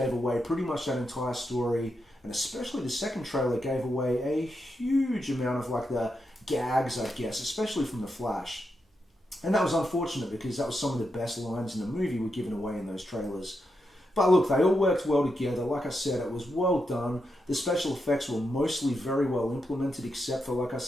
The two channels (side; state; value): both; normal; correlation 0.84